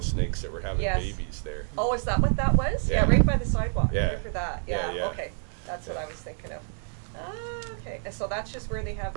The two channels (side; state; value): left; silent; digital silence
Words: snakes that were having Yes. babies there. Oh, is that what that was? Yeah. Right by the sidewalk. Yeah. Right for that. Yeah, yeah. Okay. That's what Yeah. I was thinking of. Ah, okay. And so that's just where they have